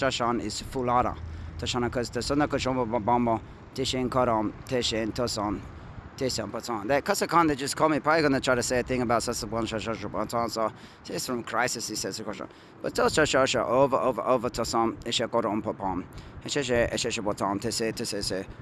is Fulada. Tashana because the Sona Koshomba Bamba, Tishin Karam, Tishin Tosan, Tishan Patan. That Casa Khan, they just call me, probably going to try to say a thing about Sasabon Shashashan. So, it's from Crisis, he says the question. But Toshasha over Tosan, Isha Koram Papam, Eshe Botan, Tese,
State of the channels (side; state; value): both; identical; correlation 1.00